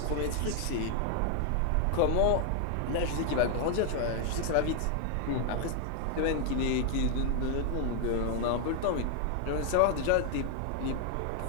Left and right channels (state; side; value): different; both; correlation 0.00